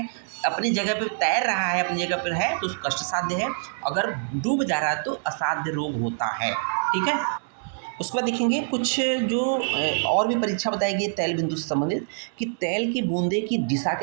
अपनी जगह पर तैर रहा है, अपनी जगह पर है, तो कष्ट साध्य है, अगर डूब जा रहा है तो असाध्य रोग होता है। ठीक है। उसके बाद देखेंगे कुछ जो और भी परीक्षा बताई गई तेल बिंदु से संबंधित, कि तेल की बूंदे की दिशा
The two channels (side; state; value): left; silent; digital silence